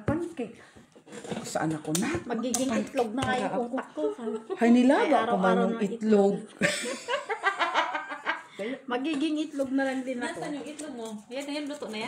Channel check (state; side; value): identical; both; correlation 1.00